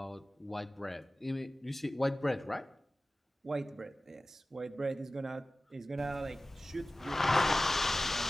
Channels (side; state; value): both; normal; correlation 0.96